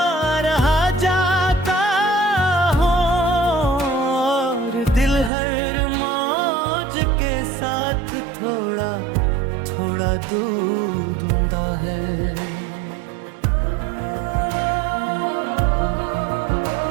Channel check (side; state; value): left; drops out; at 5.3 s